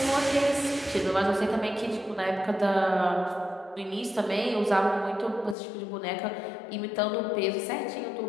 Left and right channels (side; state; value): right; drops out; at 5.6 s